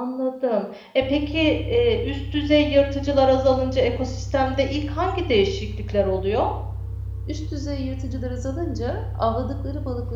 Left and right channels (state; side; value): identical; both; correlation 1.00